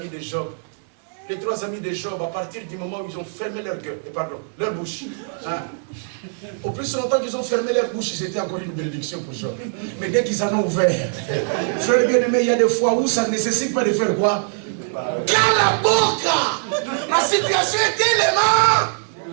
de Job. Les 3 amis de Job, à partir du moment où ils ont fermé leur bouche. Hein? Au plus longtemps qu'ils ont fermé leur bouche, c'était encore une bénédiction pour Job. Mais dès qu'ils en ont ouvert, frère bien-aimé, il y a des fois où ça ne nécessite pas de faire quoi? Cala boca! La situation est tellement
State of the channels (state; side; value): silent; left; 64 dB below the other